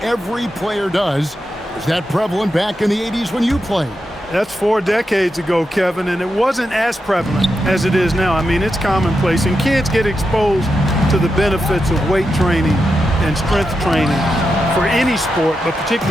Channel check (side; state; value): both; normal; correlation 0.87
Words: every player does. Is that prevalent back in the 80s when you played? That's 4 decades ago, Kevin, and it wasn't as prevalent as it is now. I mean, it's commonplace, and kids get exposed to the benefits of weight training and strength training for any sport, but